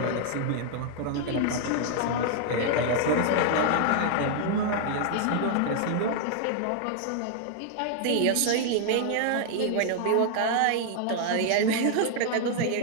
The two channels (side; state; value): both; different; correlation 0.00